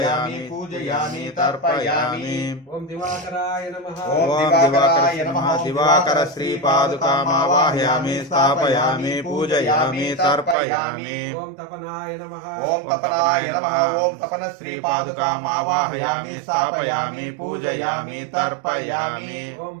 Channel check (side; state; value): left; drops out; at 10.6 s